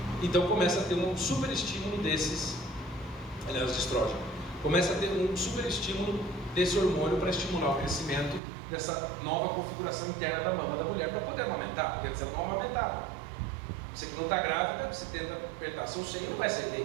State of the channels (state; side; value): drops out; left; at 8.4 s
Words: Então começa a ter um super estímulo desses, aliás, de estrógeno. Começa a ter um super estímulo desse hormônio para estimular o crescimento dessa nova configuração interna da mama da mulher para poder amamentar, porque antes ela não amamentava. Você que não está grávida, você tenta apertar seu seio e não vai sair